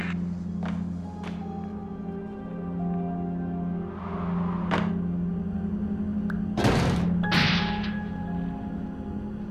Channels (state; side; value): identical; both; correlation 1.00